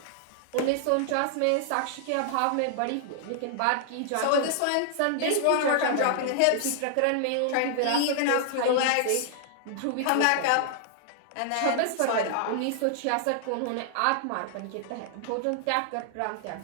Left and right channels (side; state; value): both; different; correlation -0.01